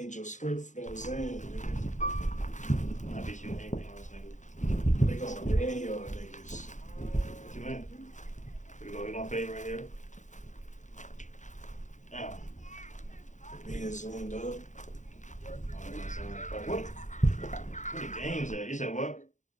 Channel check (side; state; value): right; late; 0.36 ms